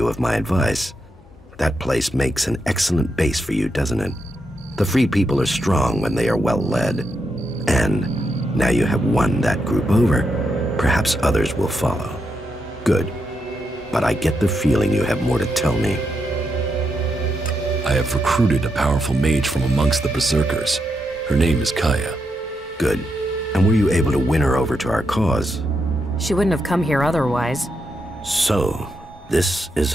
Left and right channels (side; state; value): both; normal; correlation 0.83